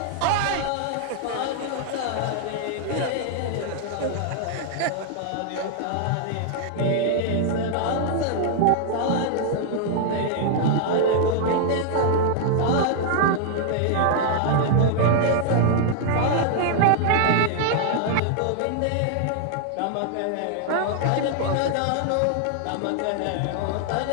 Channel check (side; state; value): both; different; correlation -0.01